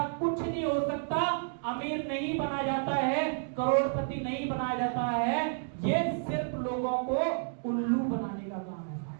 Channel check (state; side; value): silent; left; digital silence